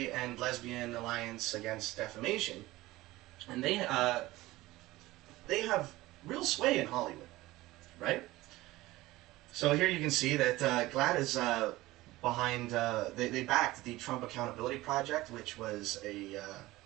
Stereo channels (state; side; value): quieter; left; 18.4 dB